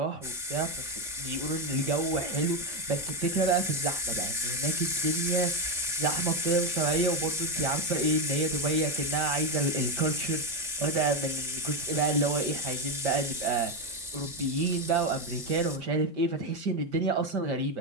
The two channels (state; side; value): normal; both; correlation 0.09